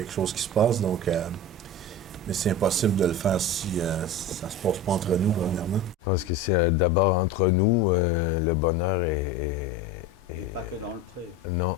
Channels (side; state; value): both; normal; correlation 0.29